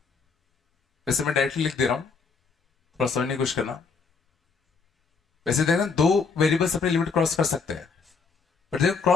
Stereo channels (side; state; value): right; quieter; 5.0 dB